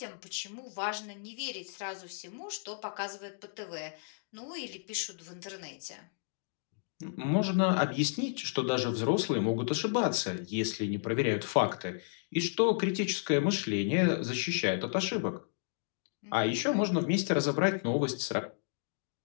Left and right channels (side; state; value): right; silent; digital silence